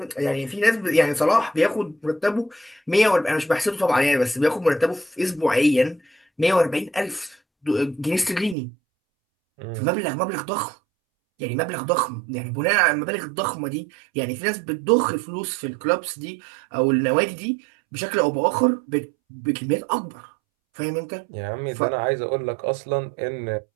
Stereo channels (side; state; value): left; drops out; at 8.6 s